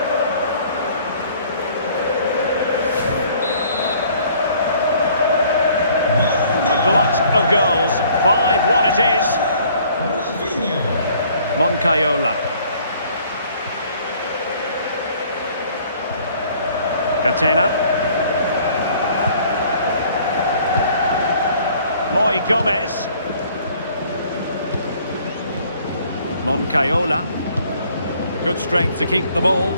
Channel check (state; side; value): inverted; both; correlation -0.58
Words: A glut of goals, 5-1 it is. Moncayola. Catena. Moy Gomez. Moncayola. Good strength to keep the ball.